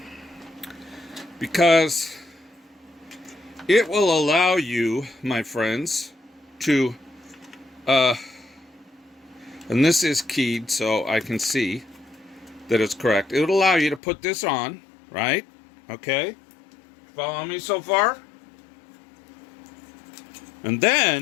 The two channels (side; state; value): right; drops out; at 14.0 s